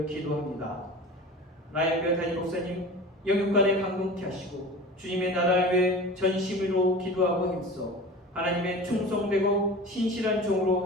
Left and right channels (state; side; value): normal; both; correlation 0.36